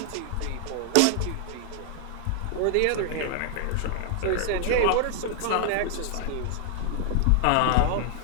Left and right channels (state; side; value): different; both; correlation 0.00